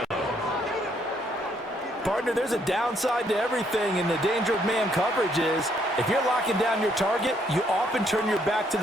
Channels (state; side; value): normal; both; correlation 0.70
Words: there's a downside to everything, and the danger of man coverage is if you're locking down your target, you often turn your back to